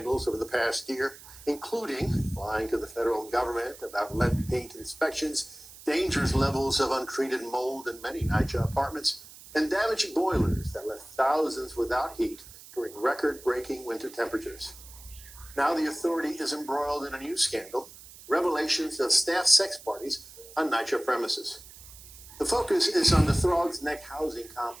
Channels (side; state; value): right; noise; hiss, 18 dB below the sound